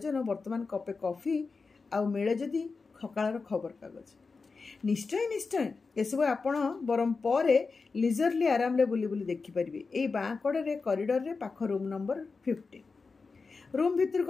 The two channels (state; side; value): quieter; right; 4.4 dB